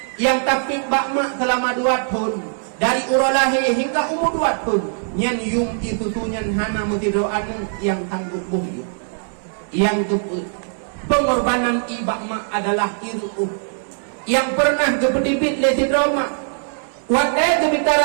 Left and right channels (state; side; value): silent; left; 65 dB below the other